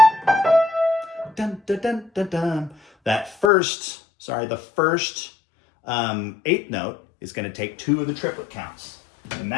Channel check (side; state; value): right; drops out; at 3.5 s